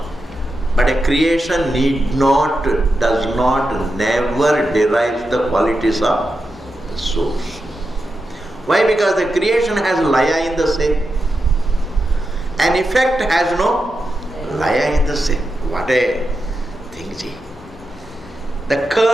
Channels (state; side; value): normal; both; correlation 0.89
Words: but a creation does not, never derives the qualities of the source. Why? Because the creation has laya in the same. An effect has no laya in the same. What a thing, gee. The